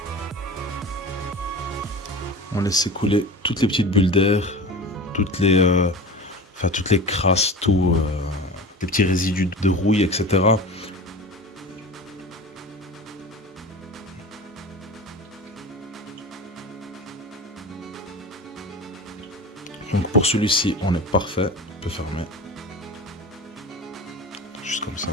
On laisse s'écouler toutes les petites bulles d'air, toutes les crasses, les petits résidus de rouille, etc. Donc pour celui-ci, on est parfait. On peut fermer. Juste comme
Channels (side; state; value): both; normal; correlation 0.33